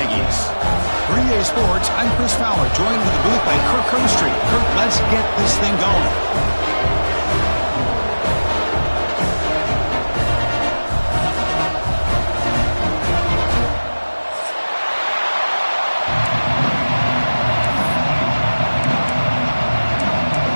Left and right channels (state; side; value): inverted; both; correlation -1.00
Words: For EA Sports, I'm Chris Fowler, joined in the booth by Kirk Herbstreit. Kirk, let's get this thing going.